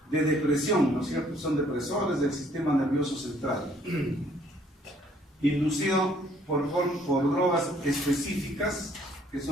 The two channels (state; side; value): normal; both; correlation 0.63